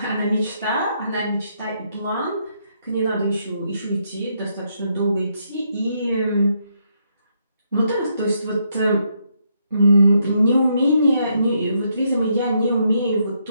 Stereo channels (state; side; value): inverted; both; correlation -0.76